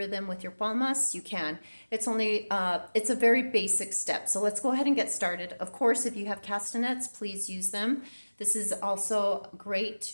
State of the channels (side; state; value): both; inverted; correlation -1.00